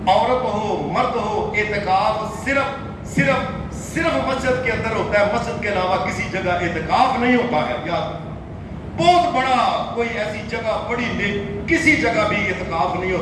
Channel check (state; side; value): identical; both; correlation 1.00